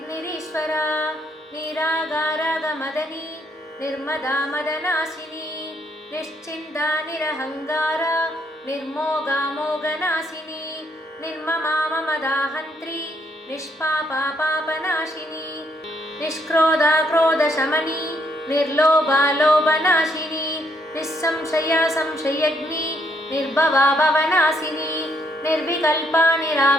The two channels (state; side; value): normal; both; correlation 0.72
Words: निरागारागमदनी निर्मदा मदनाशिनी निश्चिन्ता निरहङ्कारा निर्मोगा मोगनाशिनी निर्ममा ममदाहन्त्री निष्पापा पापनाशिनी निष्क्रोधा क्रोधशमनी निर्लोभा लोभनाशिनी निस्संशया संशयग्नि निर्भवा भवनाशिनी निर्विकल्पा